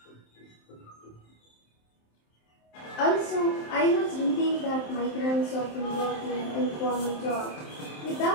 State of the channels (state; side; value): late; right; 27 ms